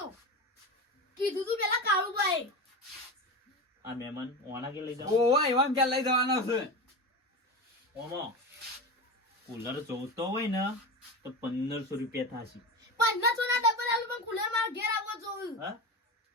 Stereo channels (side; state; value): both; normal; correlation 0.24